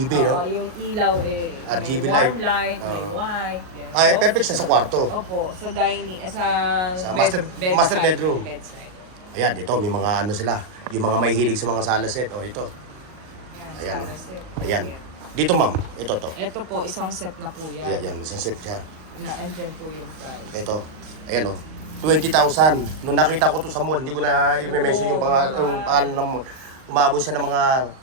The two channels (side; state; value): left; late; 38 ms